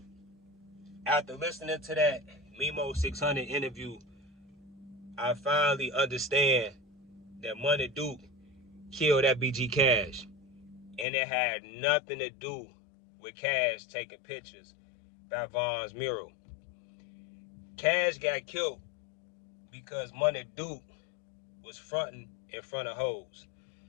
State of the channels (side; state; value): right; drops out; at 11.1 s